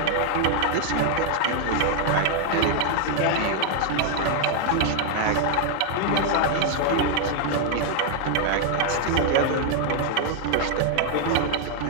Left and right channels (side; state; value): both; different; correlation 0.00